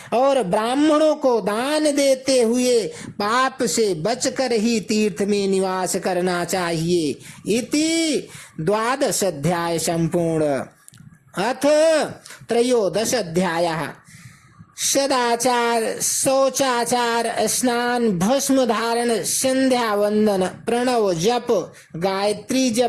और ब्राह्मणों को दान दान देते हुए पाप से बचकर ही तीर्थ में निवास करना चाहिए। इति 12 अध्याय संपूर्ण। अथ 13 अध्यायः सदाचार, शौचाचार, स्नान, भस्म धारण, संध्या वंदन, प्रणव जप, गायत्री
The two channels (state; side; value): identical; both; correlation 1.00